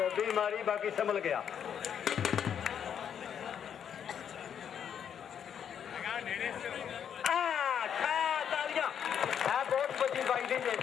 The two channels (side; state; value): right; quieter; 8.4 dB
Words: मारी बाकी संभल गया बहुत बड़ी बाइडिंग है